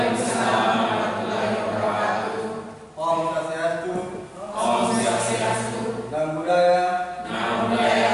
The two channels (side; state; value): both; identical; correlation 1.00